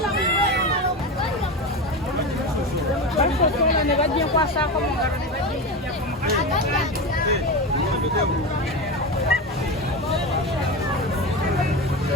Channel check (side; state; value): both; normal; correlation 0.21